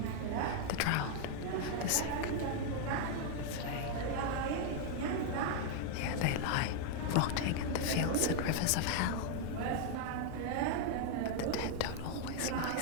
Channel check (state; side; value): different; both; correlation 0.00